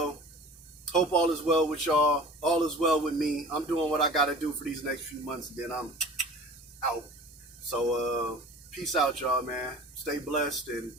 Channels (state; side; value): normal; both; correlation 0.42